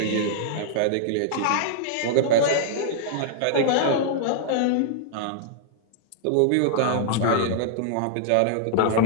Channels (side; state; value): both; different; correlation -0.01